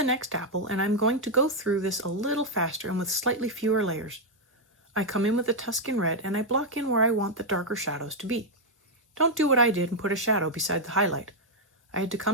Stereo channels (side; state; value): both; normal; correlation 0.00